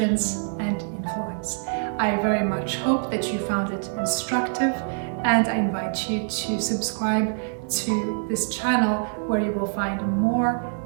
and influence. I very much hope that you found it instructive, and I invite you to subscribe to this channel where you will find more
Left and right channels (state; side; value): silent; left; 62 dB below the other